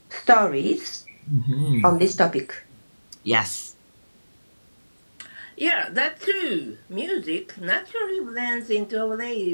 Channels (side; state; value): both; inverted; correlation -1.00